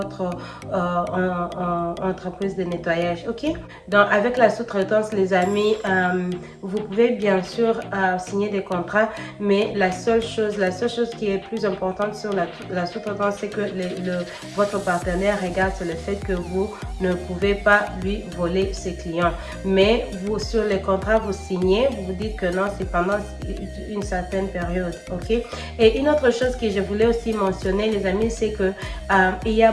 entreprise de nettoyage. Ok? Donc, avec la sous-traitance, les amis, vous pouvez bien sûr signer des contrats, mais la seule chose qui est plus importante sur la sous-traitance, c'est que votre partenaire regarde sur le fait que vous ne pouvez pas lui voler ses clients. Mais vous, sur les contrats, vous signez, vous dites que non, c'est pendant une certaine période. Ok? Et une autre chose que je voulais aussi mentionner, les amis, c'est que il y a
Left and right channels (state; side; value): identical; both; correlation 1.00